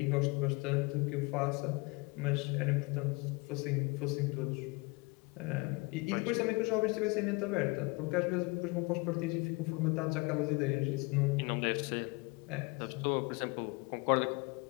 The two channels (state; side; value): quieter; right; 27.1 dB